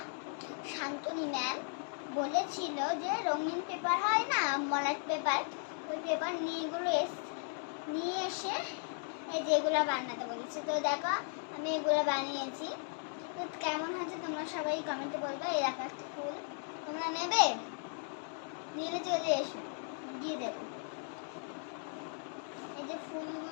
শান্তনী ম্যাম, বলেছিল যে রঙিন পেপার হয় না, মলাট পেপার, ওই পেপার নিয়ে এসে এই যেগুলো বানাতে বলেছে। তো দেখো আমি এগুলো বানিয়েছি। তো কেমন হয়েছে তোমরা সবাই কমেন্টে বলবে। এই দেখো একটা ফুল, তোমরা নেবে? নিলে চলে এসো, দিয়ে দেবো। এই যে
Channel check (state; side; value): silent; right; 53 dB below the other